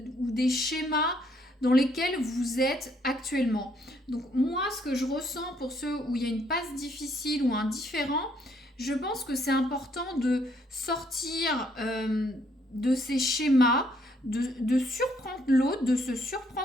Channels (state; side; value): normal; both; correlation 0.69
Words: ou des schémas dans lesquels vous êtes actuellement. Donc moi, ce que je ressens pour ceux où il y a une passe difficile ou un différend, je pense que c'est important de sortir de ces schémas, de surprendre l'autre, de se